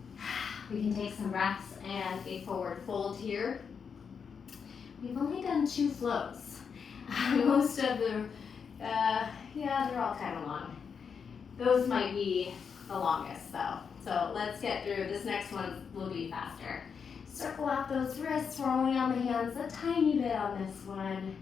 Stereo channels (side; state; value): right; quieter; 6.4 dB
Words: We can take some breaths and a forward fold here. We've only done 2 flows. Most of the, they're all kind of long. Those might be the longest though. So let's get through. This next one will be faster. Circle out those wrists. We're only on the hands a tiny bit on this one